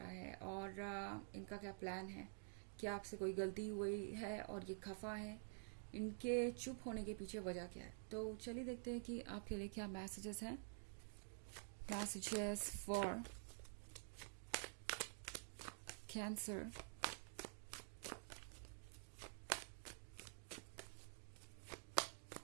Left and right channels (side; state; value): left; silent; digital silence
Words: है और इनका क्या प्लान है, क्या आपसे कोई गलती हुई है और ये खफा है, इनके चुप होने के पीछे वजह क्या है, तो चलिए देखते हैं कि आपके लिए क्या मैसेजेस हैं। Messages for Cancer.